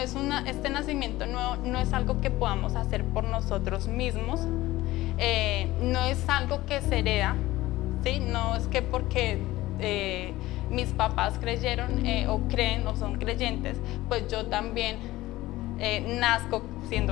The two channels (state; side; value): quieter; right; 17.4 dB